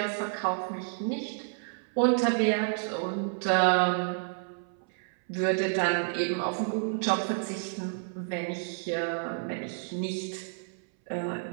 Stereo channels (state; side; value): silent; left; 58 dB below the other